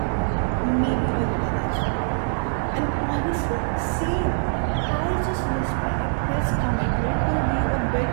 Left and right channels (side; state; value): left; silent; 63 dB below the other